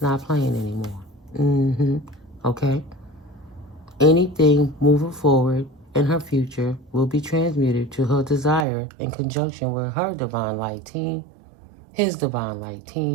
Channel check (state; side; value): drops out; left; at 8.7 s